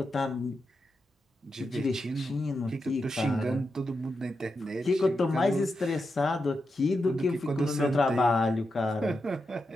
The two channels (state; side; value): normal; both; correlation 0.87